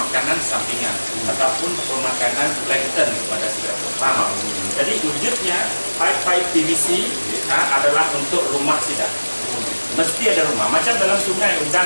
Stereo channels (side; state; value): both; inverted; correlation -1.00